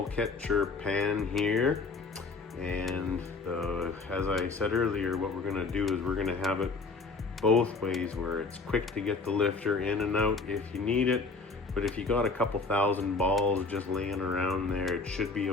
catcher pan here. And as I said earlier, what we're gonna do is we're gonna have it both ways, where it's quick to get the lifter in and out if you need it. But if you got a couple thousand balls just laying around there, it should be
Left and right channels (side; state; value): right; quieter; 4.1 dB